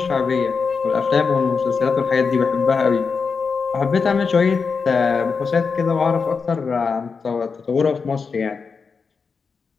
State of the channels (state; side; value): quieter; right; 5.2 dB